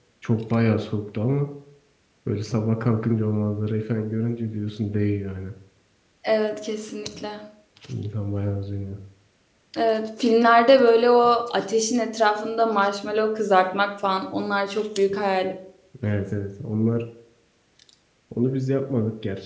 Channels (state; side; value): identical; both; correlation 1.00